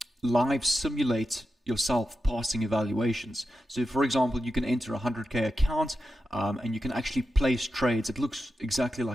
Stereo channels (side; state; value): both; normal; correlation 0.90